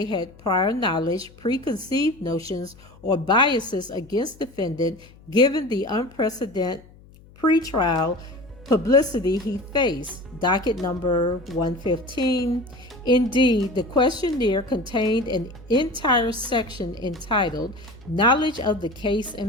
had prior knowledge, preconceived notions, or biases against defendant given the unprecedented pretrial publicity he faced. Docket number 115. Indeed, the questionnaire contained an entire section entitled Knowledge of the Case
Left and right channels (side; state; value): left; noise; hum, 24 dB below the sound